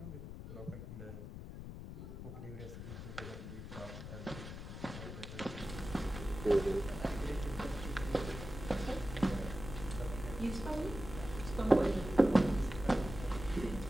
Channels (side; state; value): left; noise; rumble, 9 dB below the sound